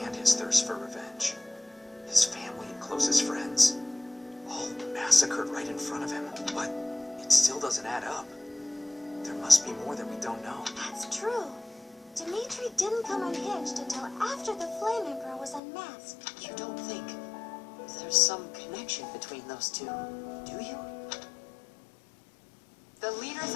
his thirst for revenge. His family and closest friends, all massacred right in front of him. But it still doesn't add up. There must be more that we don't know. That's true. Dimitri didn't come unhinged until after the Flame Emperor was unmasked. You don't think there's some connection between those two, do you? The leaders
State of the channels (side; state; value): right; drops out; at 15.6 s